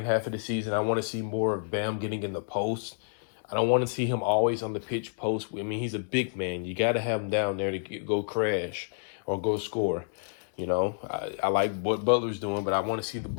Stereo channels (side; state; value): right; silent; digital silence